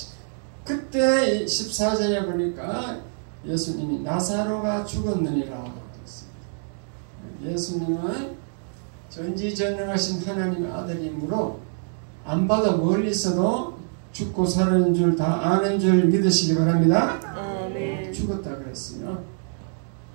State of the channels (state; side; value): silent; left; digital silence